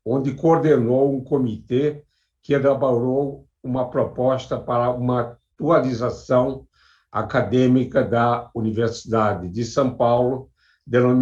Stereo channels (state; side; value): identical; both; correlation 1.00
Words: onde coordenou um comitê que elaborou uma proposta para uma atualização acadêmica da Universidade de São Paulo,